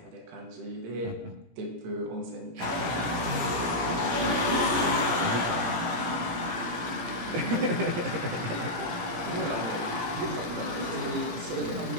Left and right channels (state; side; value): late; left; 17 ms